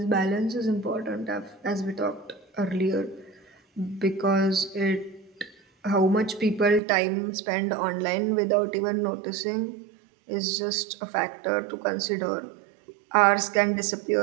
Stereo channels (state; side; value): drops out; left; at 6.8 s